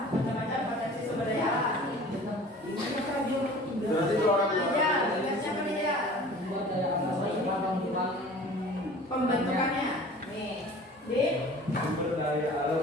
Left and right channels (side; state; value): both; normal; correlation 0.44